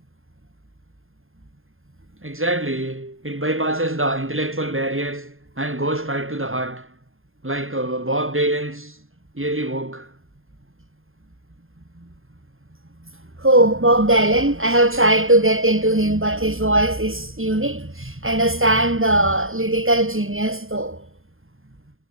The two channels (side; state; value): left; late; 0.60 ms